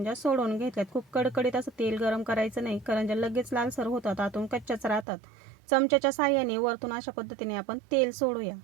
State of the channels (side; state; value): left; drops out; at 5.1 s